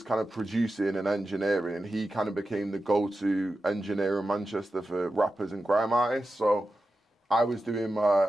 kind of producing and engineering, and he kind of became the go-to engineer in Manchester for rappers and grime artists. So I was doing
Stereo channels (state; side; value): normal; both; correlation 0.91